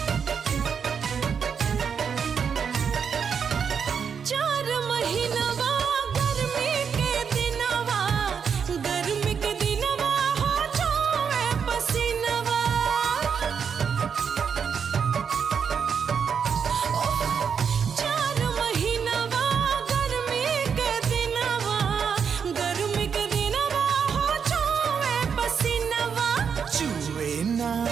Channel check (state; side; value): quieter; left; 6.8 dB